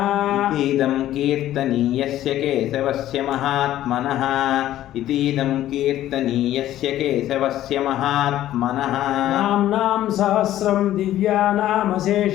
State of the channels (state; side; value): quieter; right; 13.2 dB